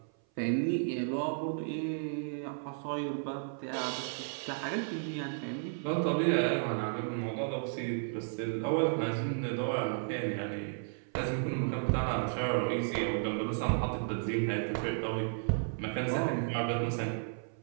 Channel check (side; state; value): left; silent; 55 dB below the other